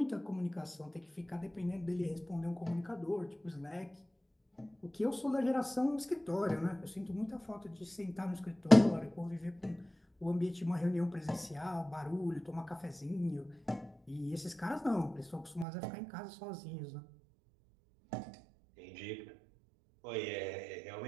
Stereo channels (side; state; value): left; drops out; at 15.7 s